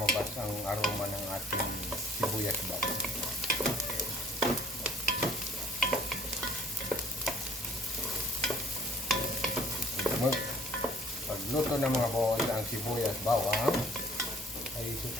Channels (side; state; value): both; normal; correlation 0.55